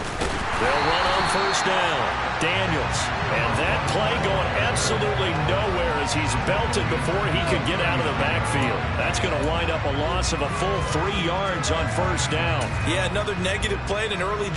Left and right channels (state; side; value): identical; both; correlation 1.00